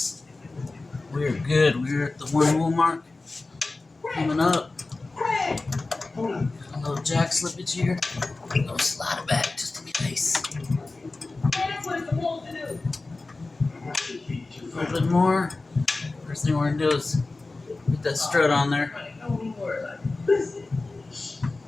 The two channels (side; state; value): right; quieter; 3.4 dB